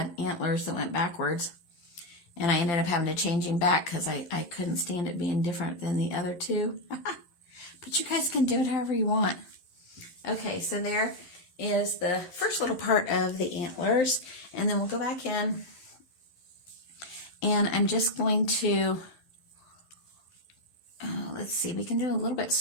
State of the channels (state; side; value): late; right; 12 ms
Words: antlers that went backwards. And I ended up having to change him back because I couldn't stand it being different than the other two. But you guys can do it however you want. Okay, so there is the first little part of the antlers. And then we'll go back in. And I'm just going to, let's see, we can do a little bit